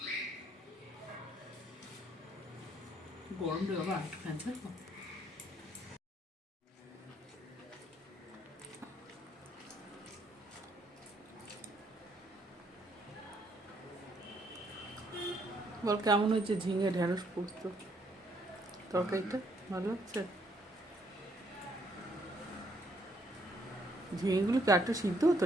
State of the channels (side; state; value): both; normal; correlation 0.69